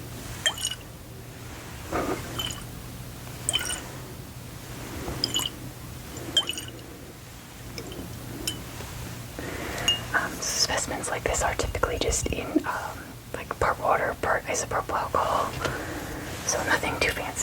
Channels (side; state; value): both; identical; correlation 1.00